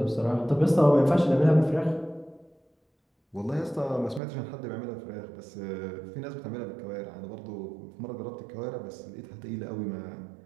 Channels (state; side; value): drops out; left; at 4.2 s